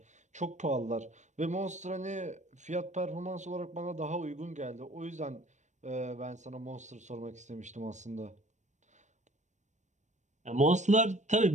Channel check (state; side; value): late; left; 0.34 ms